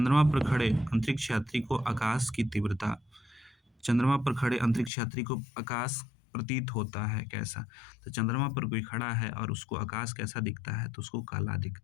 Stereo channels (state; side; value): drops out; right; at 4.9 s